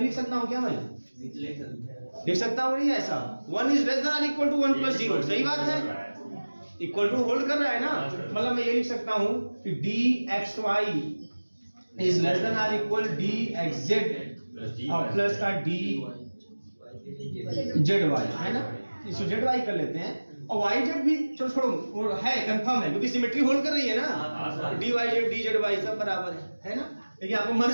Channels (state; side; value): inverted; both; correlation -1.00